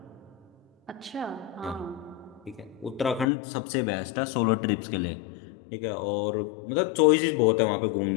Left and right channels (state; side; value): drops out; right; at 3.2 s